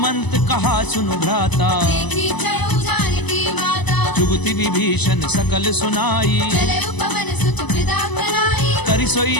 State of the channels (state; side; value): late; right; 1.0 ms